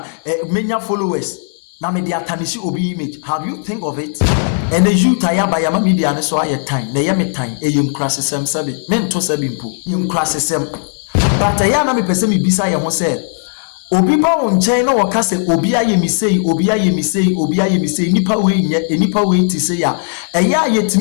many followers na me de atanisi obi image. Have you think of it? And the youth aya ba yama media ne so aye time na ye me time eyim krasesem sabe men to sabe mpo yim krasesem. But ayana me pese me bisa ye ho se obi ba won chen na woka se obi aye mi sei obi aye mi sei obi aye mi sei nipa we nye nipa we ti se ya eya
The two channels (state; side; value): silent; right; digital silence